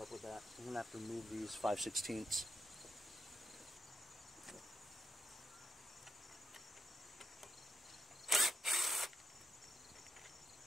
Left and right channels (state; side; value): normal; both; correlation 0.84